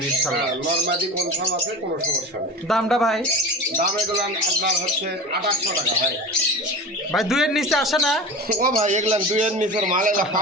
ইনশাআল্লাহ নরমাদি কনফার্ম আছে কোনো সমস্যা নেই দামটা ভাই দাম এগুলো আপনার হচ্ছে 2800 টাকা ভাই ভাই দুইয়ের নিচে আসে না ও ভাই এগুলো দুইয়ের নিচের মাল এগুলো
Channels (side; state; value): both; normal; correlation 0.32